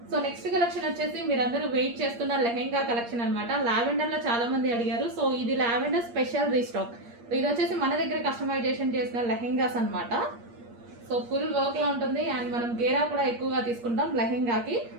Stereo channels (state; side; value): late; left; 8.5 ms